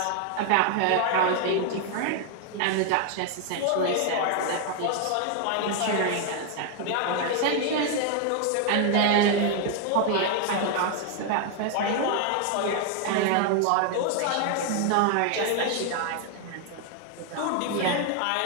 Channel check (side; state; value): both; different; correlation 0.00